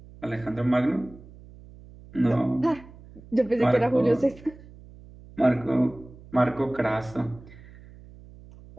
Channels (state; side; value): noise; right; hum, 20 dB below the sound